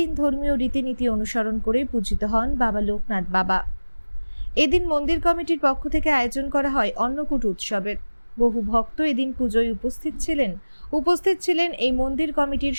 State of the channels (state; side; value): inverted; both; correlation -1.00